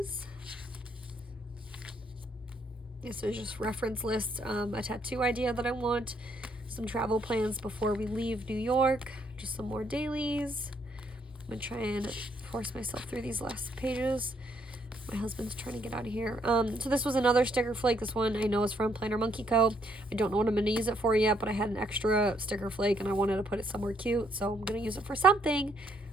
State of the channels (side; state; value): both; normal; correlation 0.71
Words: This is just reference lists, a tattoo idea that I want, some travel plans before we leave New York, just some more dailies. I'm going to try and force myself through these last pages. My husband's trying to get out of here. So this was another sticker flake. This one I know is from Planner Monkey Co. I don't know what I'm going to use it for yet, but I had an extra sticker flake and I wanted to put it somewhere cute, so I'm going to use it for something.